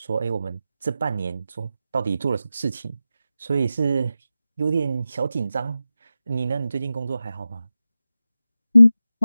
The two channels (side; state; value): both; inverted; correlation -0.92